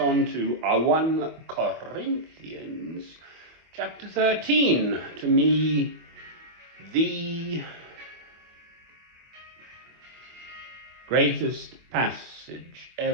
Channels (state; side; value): late; left; 24 ms